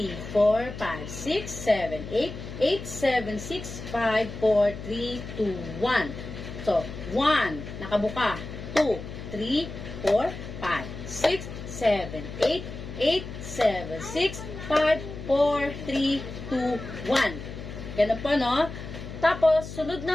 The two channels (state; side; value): noise; left; hum, 10 dB below the sound